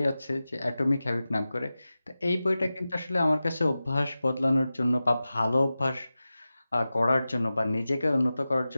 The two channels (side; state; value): both; inverted; correlation -0.95